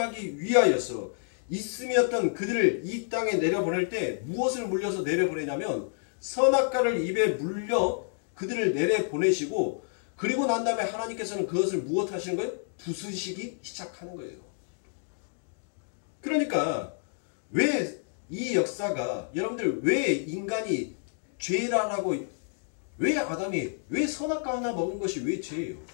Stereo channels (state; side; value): silent; right; digital silence